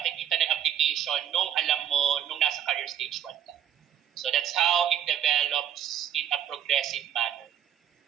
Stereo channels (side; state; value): left; quieter; 10.0 dB